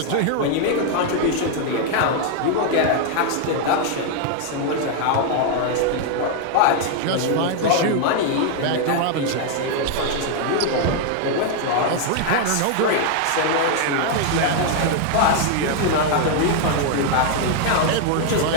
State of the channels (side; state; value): both; different; correlation 0.00